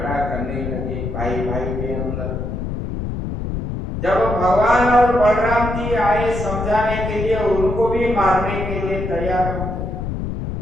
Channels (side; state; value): left; noise; rumble, 4 dB below the sound